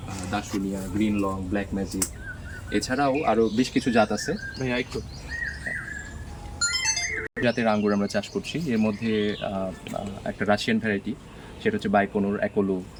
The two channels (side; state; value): both; identical; correlation 1.00